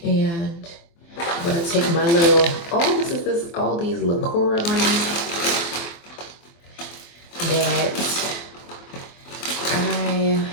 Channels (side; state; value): right; late; 24 ms